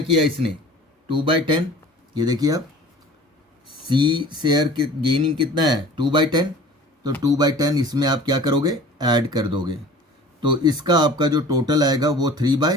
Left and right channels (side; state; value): both; normal; correlation 0.44